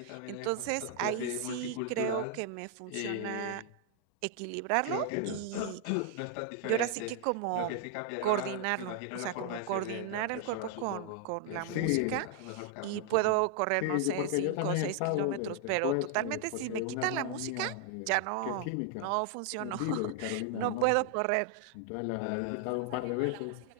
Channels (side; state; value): both; different; correlation 0.00